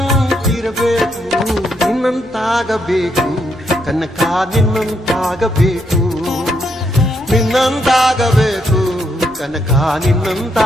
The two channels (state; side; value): normal; both; correlation 0.77